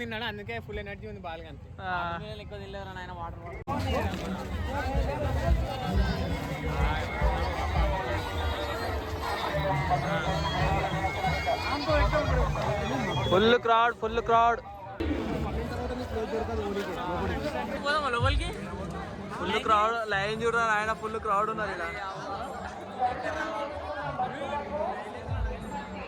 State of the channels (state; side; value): identical; both; correlation 1.00